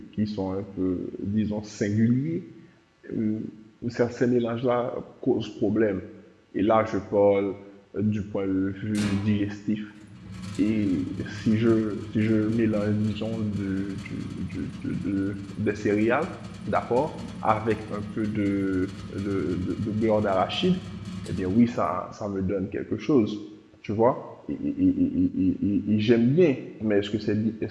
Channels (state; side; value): identical; both; correlation 1.00